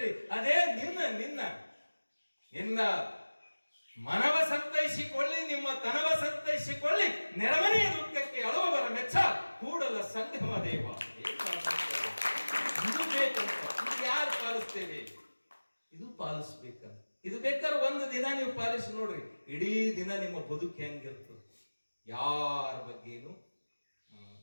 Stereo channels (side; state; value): both; inverted; correlation -1.00